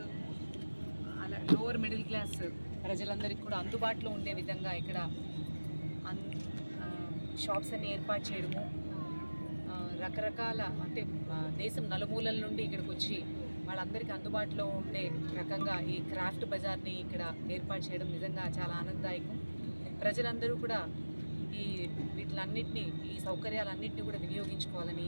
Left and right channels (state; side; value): inverted; both; correlation -1.00